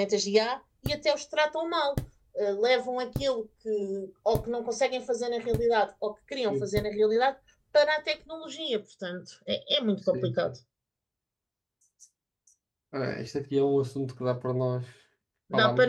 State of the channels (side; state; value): both; identical; correlation 1.00